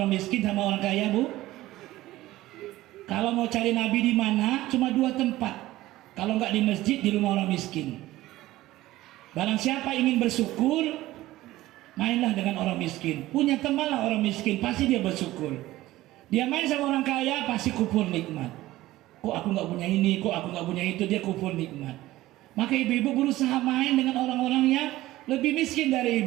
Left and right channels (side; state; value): left; quieter; 16.6 dB